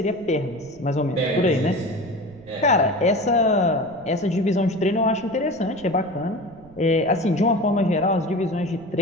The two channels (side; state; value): right; noise; rumble, 23 dB below the sound